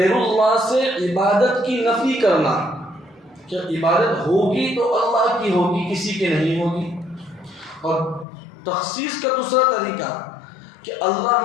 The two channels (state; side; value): drops out; right; at 8.2 s